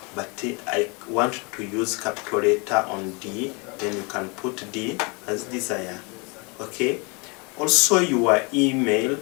but I want to use capital letter on D, then you can put D as desire, okay. Also your email,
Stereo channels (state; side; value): quieter; right; 31.0 dB